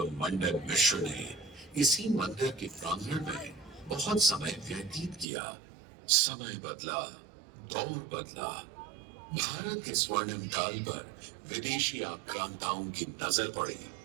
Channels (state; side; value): drops out; left; at 5.2 s